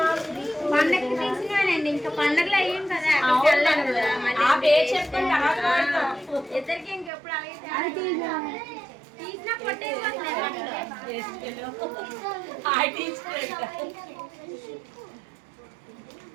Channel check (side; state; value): left; drops out; at 7.1 s